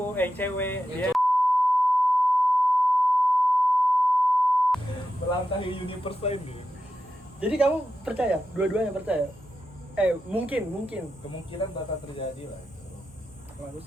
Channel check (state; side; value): normal; both; correlation 0.89